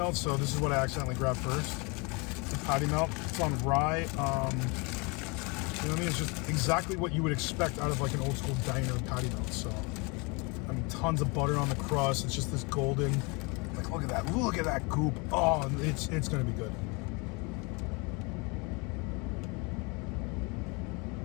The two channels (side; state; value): right; quieter; 29.6 dB